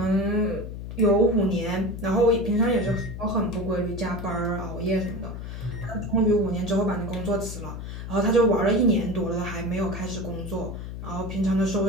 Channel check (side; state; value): left; noise; hum, 8 dB below the sound